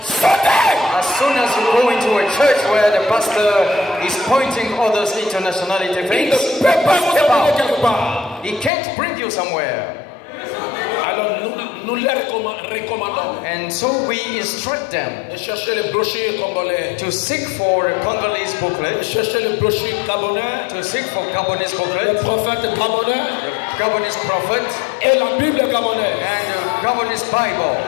Sautez! As soon as you go into a church where the pastor is pointing others into nationality things, il ne peut pas vous amener quelque part. He can't bring you somewhere. Alors nous les recommandons. And so we instruct them de chercher les brochures congolais. To seek for a Congolese booklet. De chercher les brochures gabonais. To seek for Gabonese booklet. Le prophète gabonais. The Gabonese prophet. Et la Bible gabonaise. And the Gabonese Bible.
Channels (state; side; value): drops out; right; at 8.7 s